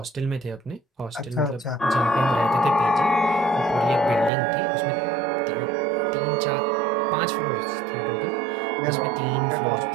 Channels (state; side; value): drops out; left; at 4.3 s